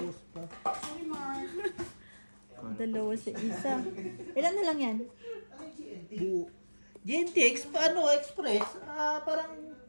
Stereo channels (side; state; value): both; inverted; correlation -1.00